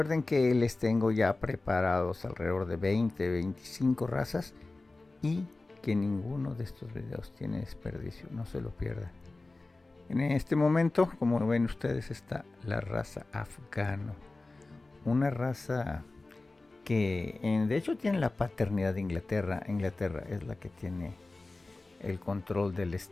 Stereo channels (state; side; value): quieter; right; 3.2 dB